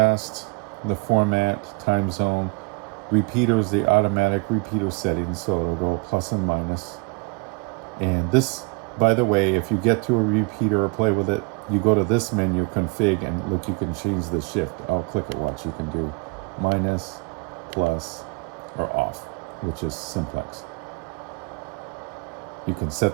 the format, time zone. repeaters, the automatic repeater settings, so it'll go plus and minus. And this, by the way, if you get to a repeater or play with it, you go to this menu, config, and look, you can change the shift. I'll click it, watch. You can do minus, plus, or off, which is simplex. You can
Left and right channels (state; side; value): quieter; left; 30.0 dB